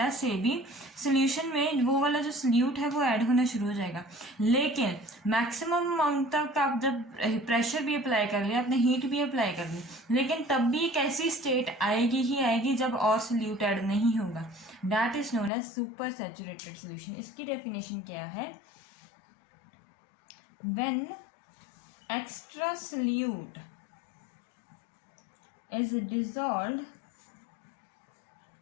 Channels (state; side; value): drops out; right; at 15.5 s